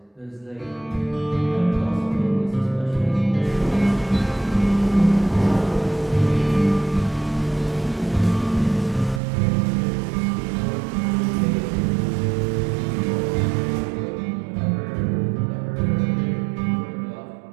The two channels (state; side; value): drops out; left; at 9.2 s